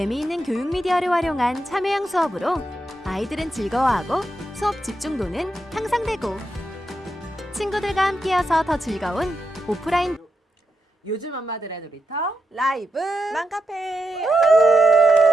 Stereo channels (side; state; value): both; normal; correlation 0.86